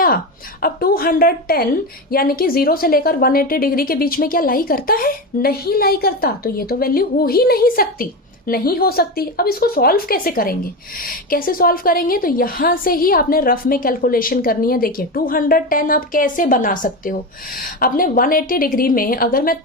अब 210 यानी कि 0 से लेकर 180 डिग्री के बीच में क्या लाई करता है? नहीं लाई करता। तो ये तो वैल्यू हो ही नहीं सकती, नहीं हो सकती। अब इसको सॉल्व कैसे करेंगे, कैसे सॉल्व करेंगे? तो यहां से ही आपने रफ में कैलकुलेशन करनी है। देखिए 210 आप कैसे बना सकते हो, आपने 180 डिग्री में अगर मैं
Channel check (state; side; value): normal; both; correlation 0.19